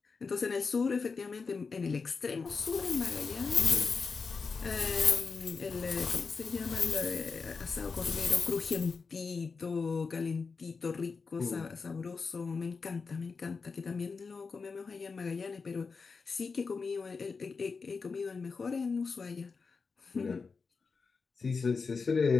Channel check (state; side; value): quieter; right; 4.8 dB